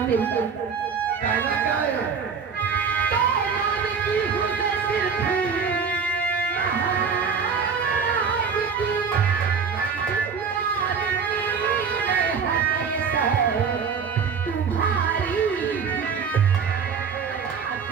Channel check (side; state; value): left; quieter; 6.0 dB